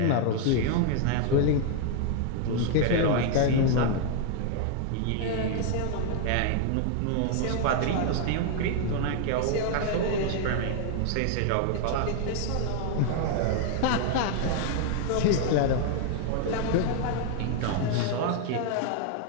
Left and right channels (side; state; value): both; different; correlation 0.00